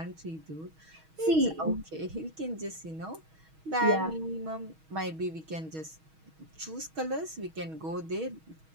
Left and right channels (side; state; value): left; late; 6.3 ms